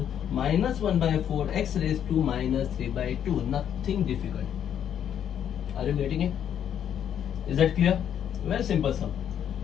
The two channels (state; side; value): quieter; right; 9.3 dB